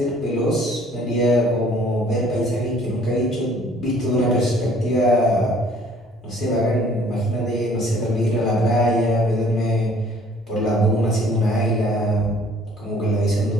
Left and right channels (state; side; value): normal; both; correlation 0.56